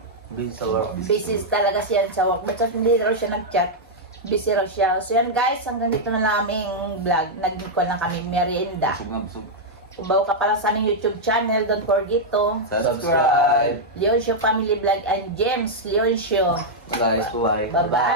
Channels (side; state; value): both; normal; correlation -0.04